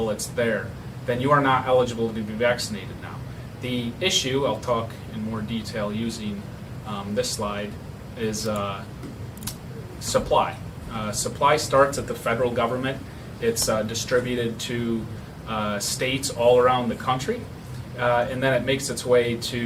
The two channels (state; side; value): identical; both; correlation 1.00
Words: there, then you are not eligible to be vaccinated now. The issue, I'll talk in more detail using this slide, is supply. Supply starts at the federal government It's distributed to states all around the country, and then it makes its way